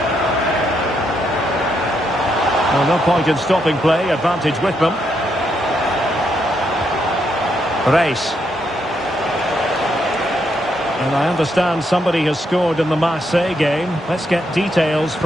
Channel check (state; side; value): normal; both; correlation 0.78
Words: Well, no point in stopping play. Advantage with them. Reis. And I understand somebody has scored in the Marseille game. Let's get details